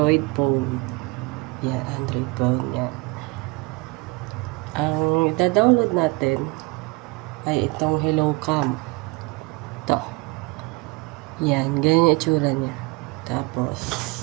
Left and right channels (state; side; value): quieter; left; 25.7 dB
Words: phone. Yan, Android phone. Yan. Ang ida-download natin ay itong Hello Cam. Ito. Yan, ganyan yung itsura niya. Tapos,